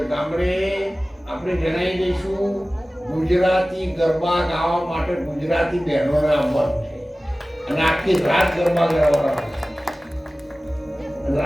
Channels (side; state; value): both; normal; correlation 0.97